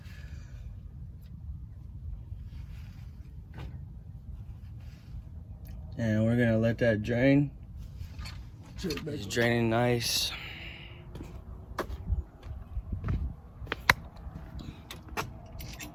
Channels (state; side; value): identical; both; correlation 1.00